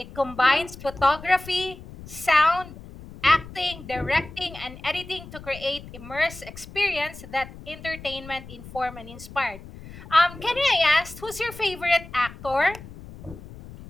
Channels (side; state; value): left; noise; rumble, 16 dB below the sound